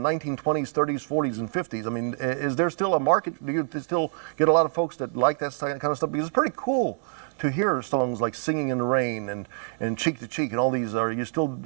30s, 40s, and 50s. I mean, is there still a market? Do you still get a lot of folks that like that kind of stuff? Because it's pretty cool to hear songs like Singing in the Rain and Cheek to Cheek and all these. Are you still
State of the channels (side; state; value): left; silent; digital silence